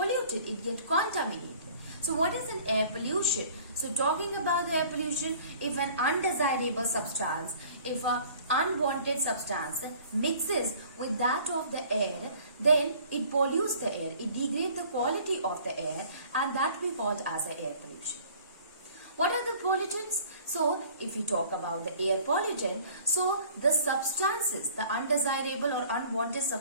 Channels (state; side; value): inverted; both; correlation -0.51